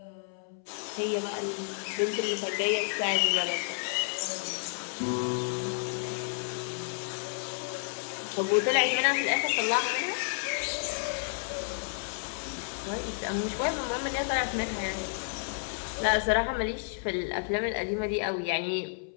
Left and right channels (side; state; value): right; silent; 57 dB below the other